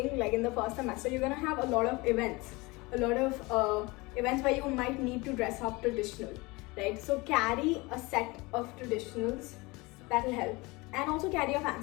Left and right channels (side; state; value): right; quieter; 24.1 dB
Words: like in the first semester, you're gonna have a lot of events where you might need to dress up traditional, right? So carry a set of traditionals, that will help. And also carry a